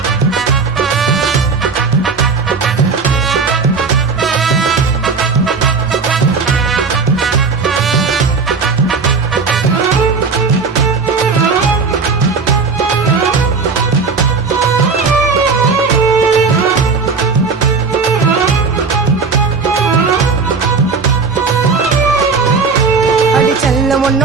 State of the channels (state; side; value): quieter; left; 4.8 dB